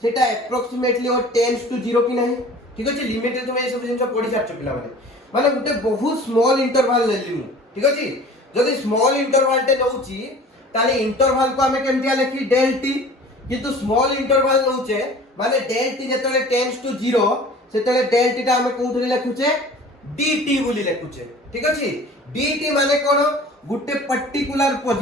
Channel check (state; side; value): normal; both; correlation 0.44